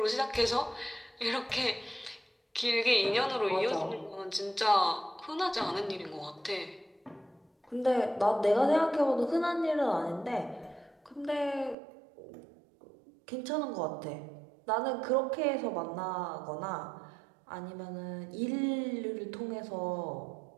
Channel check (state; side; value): drops out; left; at 11.8 s